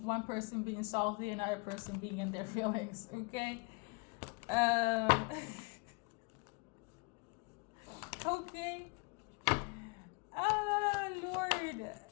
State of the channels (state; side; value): quieter; right; 30.0 dB